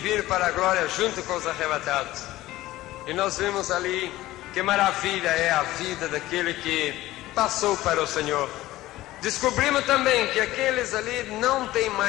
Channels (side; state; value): right; quieter; 16.5 dB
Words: para a glória junto com os arrebatados. E nós vimos ali que maravilha é a vida daquele que passou para o Senhor. Descobrimos também que aqueles ali não têm